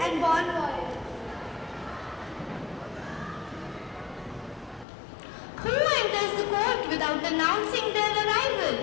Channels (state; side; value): drops out; right; at 4.9 s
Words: bon voyage. Who enters the court without announcing their